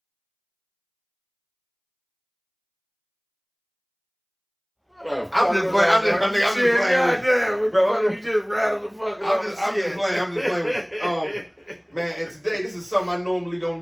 I'm just playing. I'm just playing. Bro, you just rattled the fuck up. I'm just playing. Man, and today this is something I normally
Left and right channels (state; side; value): identical; both; correlation 1.00